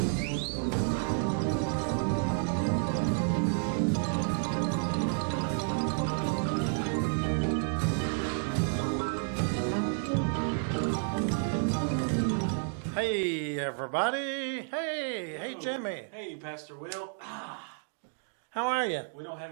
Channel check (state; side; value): silent; left; 57 dB below the other